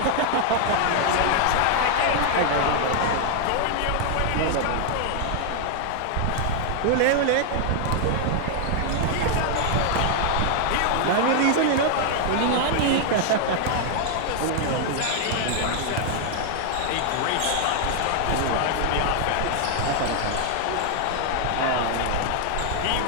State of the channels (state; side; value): different; both; correlation 0.00